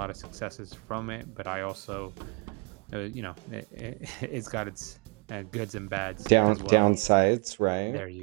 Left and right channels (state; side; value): quieter; left; 34.7 dB